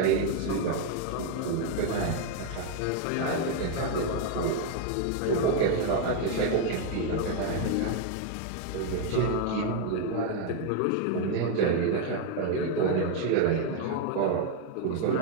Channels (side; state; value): both; different; correlation 0.01